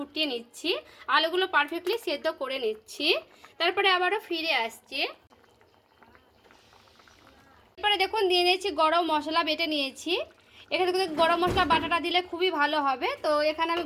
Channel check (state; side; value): identical; both; correlation 1.00